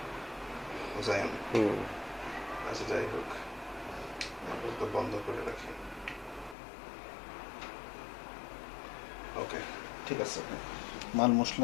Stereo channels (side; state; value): right; drops out; at 6.6 s